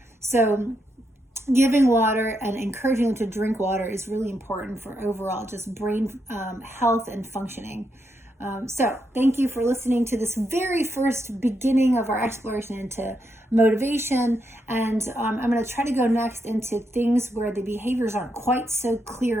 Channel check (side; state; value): both; normal; correlation 0.81